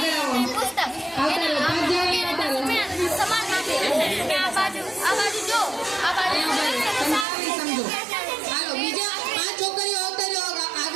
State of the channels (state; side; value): drops out; left; at 7.2 s